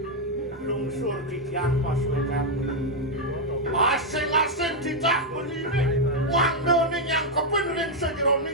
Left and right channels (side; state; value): both; normal; correlation 0.01